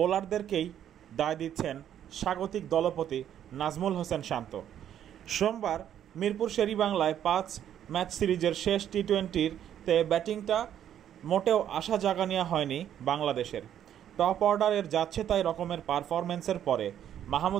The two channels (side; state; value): left; quieter; 10.2 dB